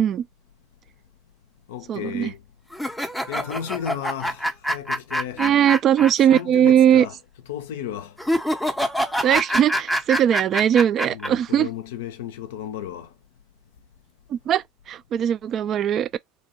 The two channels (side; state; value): left; quieter; 6.4 dB